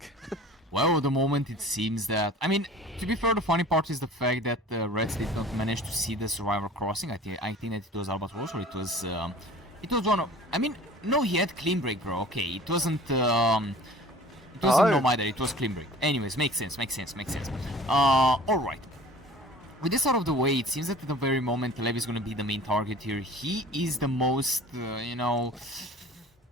Well, at the moment it seems that... I mean, to be fair, the funny part is the fact that Reds did not manage to see the Survivor crossing. I think that it was Albatross, or it was one of... I mean, no, he had clean break, bro. Okay, it wasn't... It wasn't no either, it was clean break. Anyways, makes sense. Alright. With this out of the way, it seems that at the very moment Lev is going to be the main target here. He is the most,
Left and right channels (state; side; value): normal; both; correlation 0.45